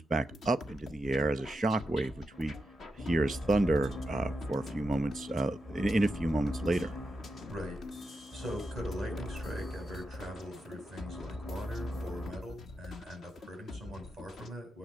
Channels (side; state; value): both; normal; correlation 0.87